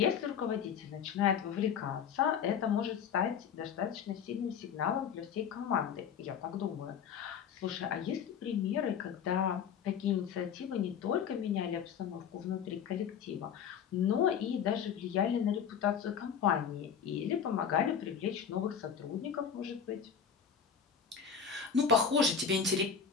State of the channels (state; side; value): quieter; right; 7.4 dB